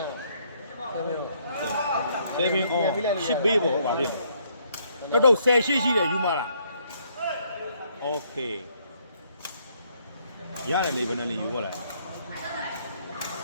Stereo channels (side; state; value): both; inverted; correlation -0.69